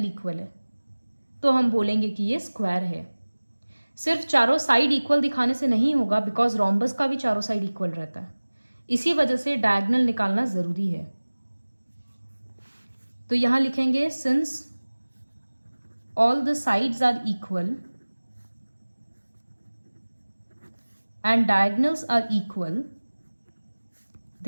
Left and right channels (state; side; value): inverted; both; correlation -1.00